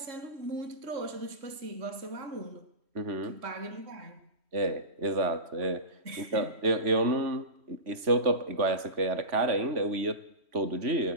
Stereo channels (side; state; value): left; late; 3.1 ms